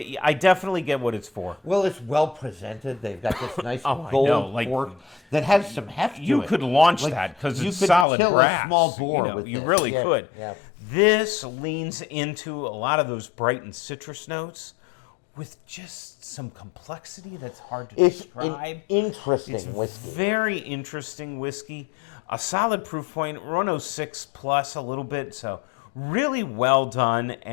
I definitely get what it's for. Well, it's well presented. They've got this nice gold cork that has some heft to it. You could launch that because it's solid brass. You could kill a small boar with you this. really could. Yeah. This leans into a lot of those bright and citrus notes with just some complexity that's hard to describe. It's an interesting whiskey. Very interesting whiskey. A solid proof point, 106 plus a little bit, so really well done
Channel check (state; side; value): drops out; right; at 8.1 s